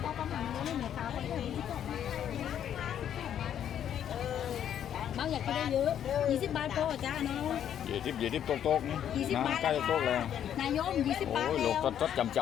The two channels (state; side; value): quieter; right; 9.8 dB